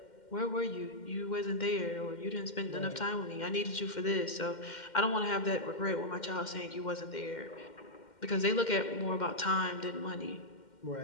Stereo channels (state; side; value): late; right; 2.1 ms